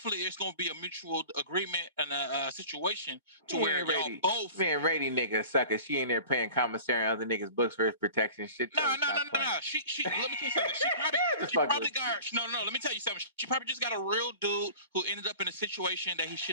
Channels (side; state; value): both; inverted; correlation -0.41